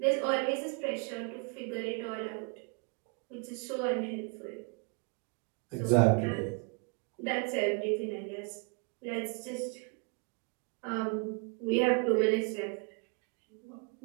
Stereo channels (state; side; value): quieter; left; 33.4 dB